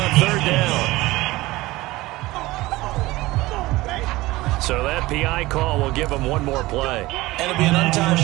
third down. So that PI call will give him one more play. And it'll be an untimed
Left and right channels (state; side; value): quieter; left; 19.3 dB